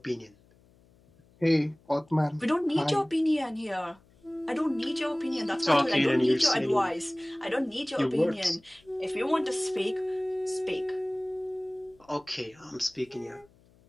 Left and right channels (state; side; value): noise; left; hum, 30 dB below the sound